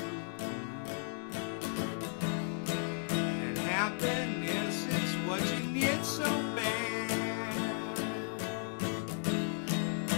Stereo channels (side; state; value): right; silent; 54 dB below the other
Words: and happiness is what you need so bad.